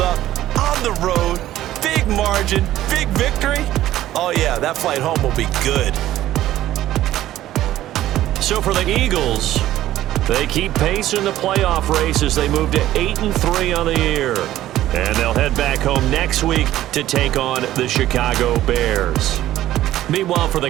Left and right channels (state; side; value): quieter; left; 13.9 dB